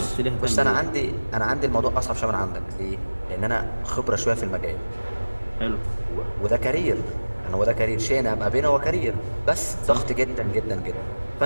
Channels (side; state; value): both; inverted; correlation -1.00